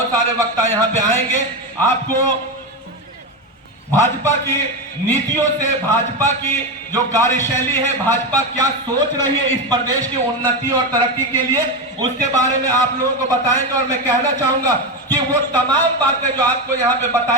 सारे वक्ता यहाँ पे आएंगे, आपको भाजपा की नीतियों से, भाजपा की जो कार्यशैली है, भाजपा क्या सोच रही है इस प्रदेश की उन्नति और तरक्की के लिए, उसके बारे में आप लोगों को बताएंगे। और मैं कहना चाहूंगा कि वो तमाम बातें जो आपको यहाँ पे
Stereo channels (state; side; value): normal; both; correlation 0.14